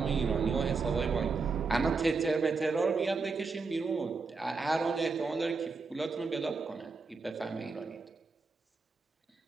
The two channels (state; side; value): quieter; left; 4.4 dB